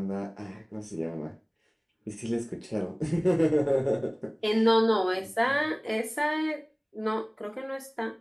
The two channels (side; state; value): both; identical; correlation 1.00